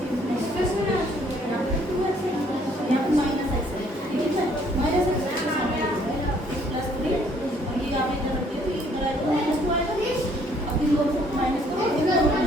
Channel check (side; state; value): both; normal; correlation 0.63